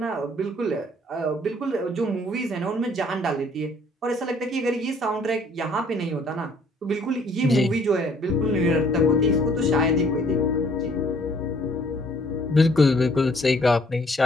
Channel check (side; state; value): both; normal; correlation 0.60